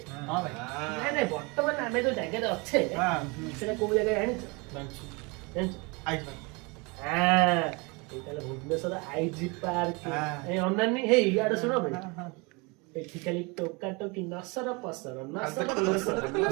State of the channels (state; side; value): quieter; left; 28.0 dB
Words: हाँ भाई। ନାଇଁ ନାଇଁ ବର୍ତ୍ତମାନ ଆମେ ଯୋଉ ଜାଗାରେ ଅଛେ ସେଟା କୋଉ ଜାଗା ଜାଣିଛ? ଜାଣିଛ? ଏଇଟା ହେଲା ଭୁବନେଶ୍ୱର ଆଇଜି ପାର୍କ ଏ ଅନାନି ହେଇ ଇଆଡେ ଶୁଣ ଭାଇ ଏଠି ଖାଲି ଟୋକା ଟୋକି ନସର ପସର ନସର ପସର